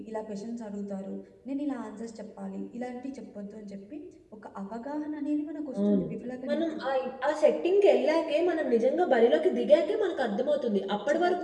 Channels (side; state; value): both; identical; correlation 1.00